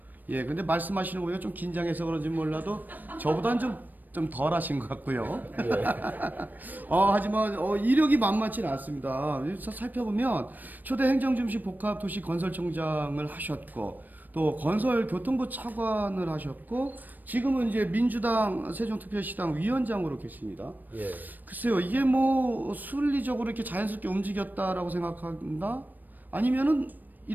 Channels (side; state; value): left; late; 0.088 ms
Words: 근데 말씀하시는 거 보니까 좀 긴장해서 그런지 몰라도 저보다는 좀 덜 하신 것 같고요. 네. 하지만 이력이 만만치는 않습니다. 살펴보면 초대 행정중심 복합도시건설청장을 하셨고 또 건설교통부 차관을 하셨고 지금은 이제 민주당 세종특별시당 위원장으로 계십니다. 예. 글쎄요, 이게 순리적으로 이렇게 자연스럽게 움직였다라고 생각한다? 아니면은